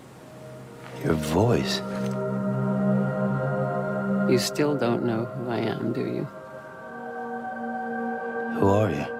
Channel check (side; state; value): both; identical; correlation 1.00